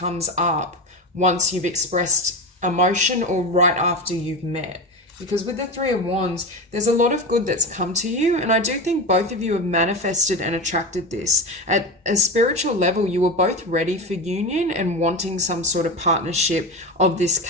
up once you've expressed emotion or right after you've met. Because with the Three of Wands, there's a lot of good that's come to you. And I do think both of you have manifested and attracted this. At a spiritual level, you were both ready for union and wanting some sort of partnership of this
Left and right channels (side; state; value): both; normal; correlation 0.22